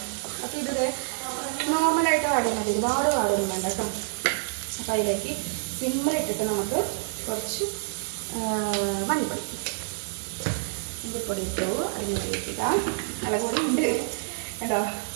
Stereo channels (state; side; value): silent; left; 60 dB below the other